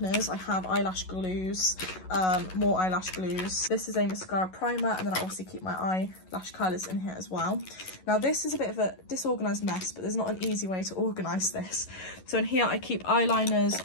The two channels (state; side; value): late; right; 11 ms